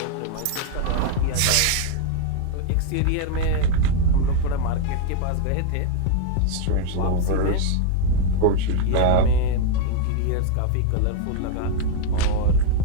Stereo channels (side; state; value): both; different; correlation 0.00